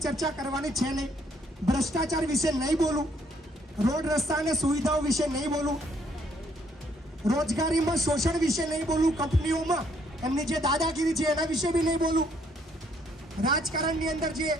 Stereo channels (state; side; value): normal; both; correlation 0.68